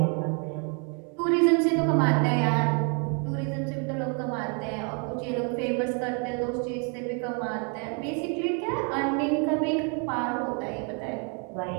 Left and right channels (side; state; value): left; quieter; 38.7 dB